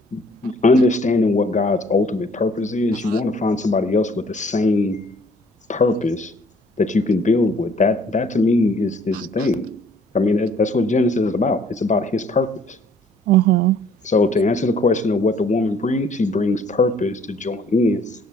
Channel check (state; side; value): normal; both; correlation 0.59